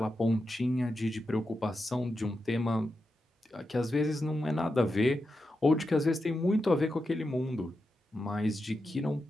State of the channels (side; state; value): both; normal; correlation 0.88